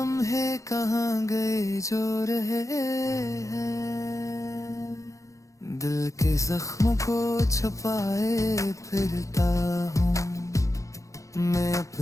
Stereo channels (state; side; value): late; right; 0.15 ms